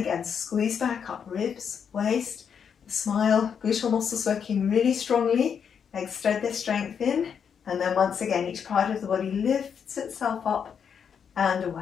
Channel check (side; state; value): right; quieter; 7.2 dB